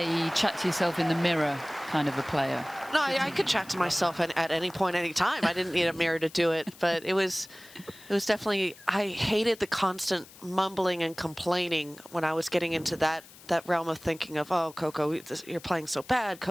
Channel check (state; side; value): noise; left; hiss, 21 dB below the sound